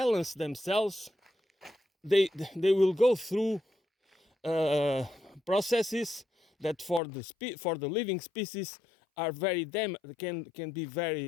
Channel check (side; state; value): right; drops out; at 7.0 s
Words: themselves, they will go through processes that for the living species are can be